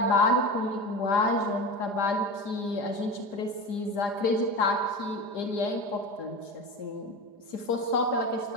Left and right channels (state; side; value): late; right; 4.9 ms